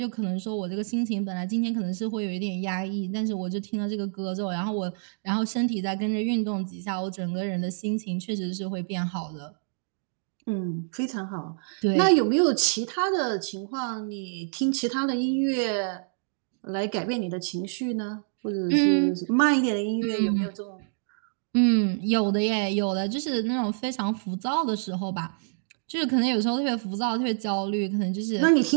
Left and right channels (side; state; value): left; silent; digital silence